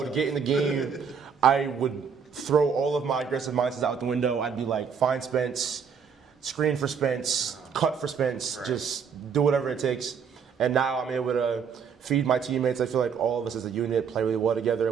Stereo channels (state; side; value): quieter; left; 6.6 dB